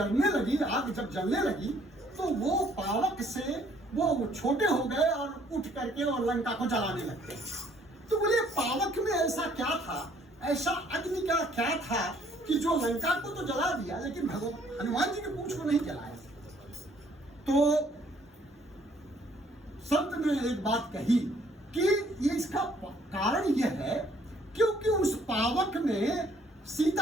लगी, आग जब जलने लगी, तो वो पावक से वो छोटे हो गए और उठ करके और लंका को जलाने लगते। तो बोले पावक में ऐसा क्या था, ऐसा अग्नि का क्या था कि जो लंका को तो जला दिया, लेकिन भगवान हनुमान जी की पूंछ को नहीं जलाया। तो संत ने एक बात कही कि ये इसका कारण यह है क्योंकि उस पावक में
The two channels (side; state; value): both; normal; correlation 0.63